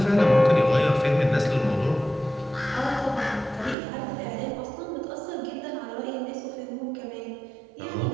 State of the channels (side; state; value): left; drops out; at 3.8 s